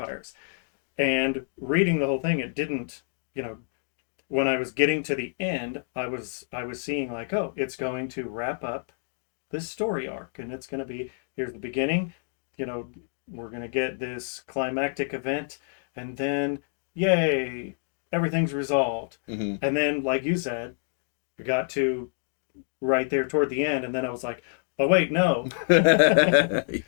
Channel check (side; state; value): right; silent; digital silence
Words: And reading the whole thing, it didn't, when I was getting to the end, I was seeing it's going to wrap up this story arc, and it's going to be, here's the beginning, we're going to get this climactic event, and then yay, everything's resolved. Mm-hmm. And then, like you said, we got to right there toward the end, and then I was like, oh wait, no.